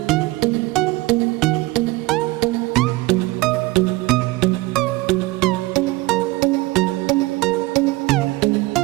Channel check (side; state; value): left; quieter; 20.5 dB